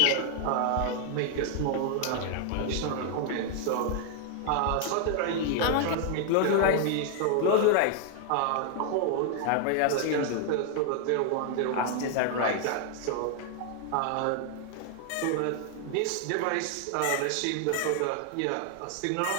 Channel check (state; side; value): different; both; correlation 0.00